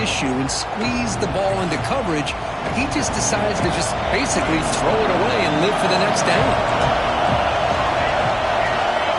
and squeeze the ball into coverage, he just decides to just basically throw it away and live for the next down.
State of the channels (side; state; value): both; identical; correlation 1.00